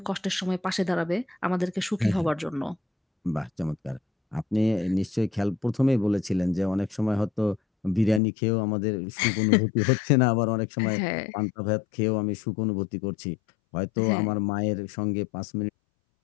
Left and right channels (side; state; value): right; drops out; at 8.2 s